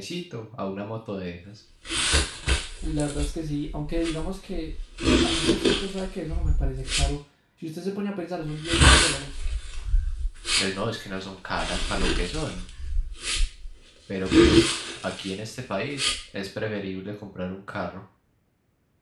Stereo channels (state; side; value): identical; both; correlation 1.00